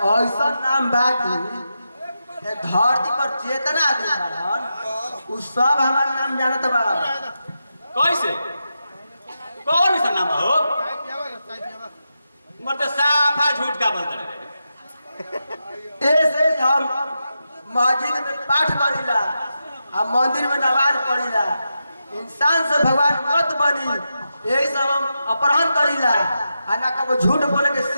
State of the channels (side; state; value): both; inverted; correlation -0.88